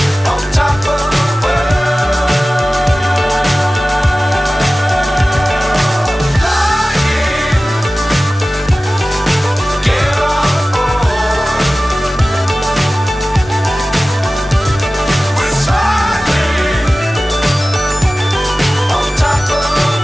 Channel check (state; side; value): normal; both; correlation 0.96